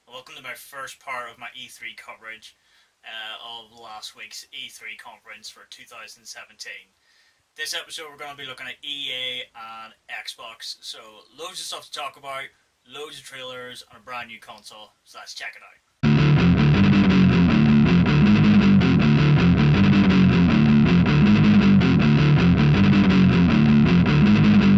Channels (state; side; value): identical; both; correlation 1.00